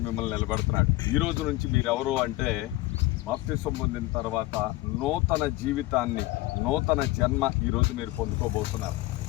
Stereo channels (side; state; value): right; quieter; 18.8 dB